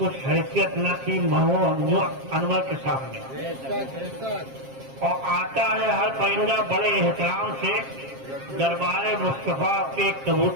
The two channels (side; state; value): left; late; 7.5 ms